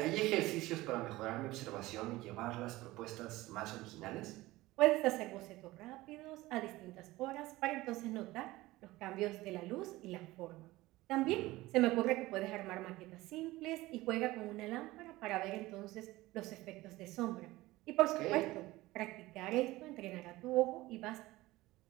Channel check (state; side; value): quieter; left; 18.7 dB